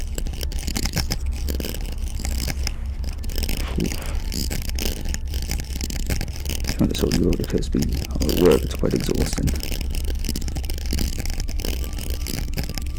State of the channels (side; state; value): both; identical; correlation 1.00